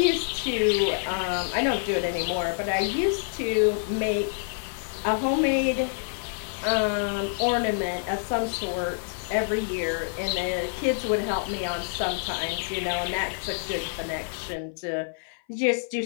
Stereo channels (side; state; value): right; silent; 57 dB below the other